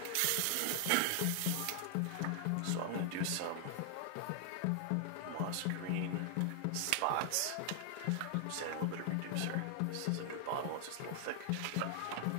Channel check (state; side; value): different; both; correlation 0.00